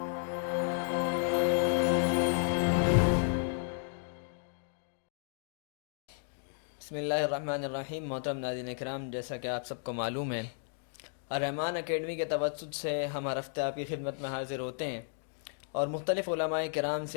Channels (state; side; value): silent; right; digital silence